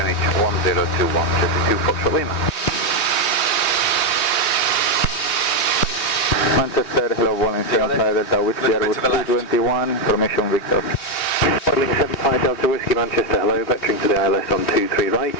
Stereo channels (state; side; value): late; right; 3.1 ms